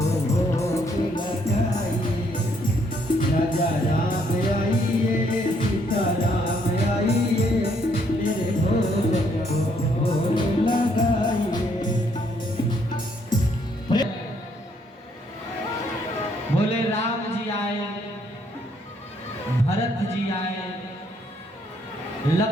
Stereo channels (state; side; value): normal; both; correlation 0.70